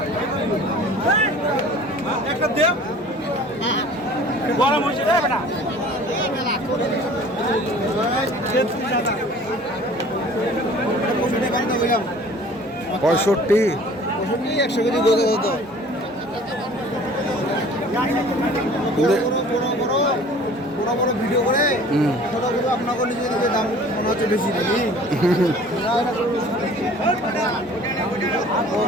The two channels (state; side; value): normal; both; correlation 0.48